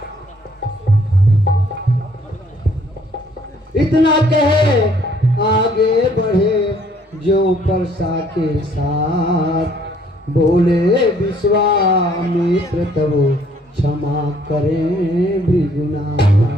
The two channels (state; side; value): normal; both; correlation 0.63